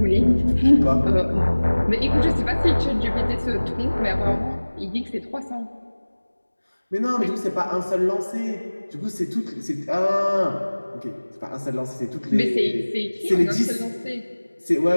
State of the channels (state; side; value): inverted; both; correlation -1.00